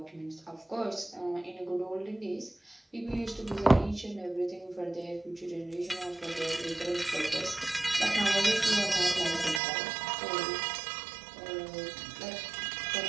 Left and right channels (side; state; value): left; drops out; at 9.6 s